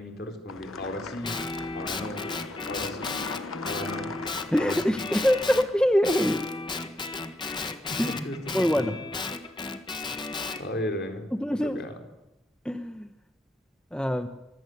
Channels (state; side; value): normal; both; correlation 0.80